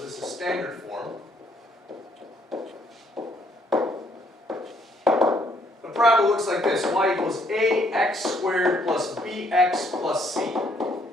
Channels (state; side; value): normal; both; correlation 0.68